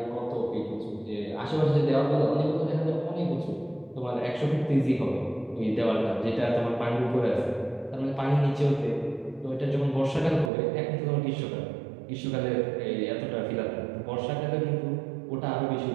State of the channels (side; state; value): left; drops out; at 10.5 s